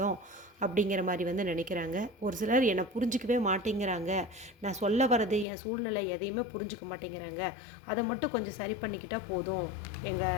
அப்படிங்கிற மாதிரி வந்து நினைக்கிறாங்க, ஒரு சிலர் என்னை புரிஞ்சிக்கவே மாட்டேங்கிறாங்க, நான் சொல்ல வர்றது என் சூழ்நிலை எதையுமே புரிஞ்சிக்க மாட்டேங்கிறாங்க, அதை மட்டும் கொஞ்சம் சரி பண்ணிக்கிட்டால் போதும்,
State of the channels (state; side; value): drops out; right; at 5.5 s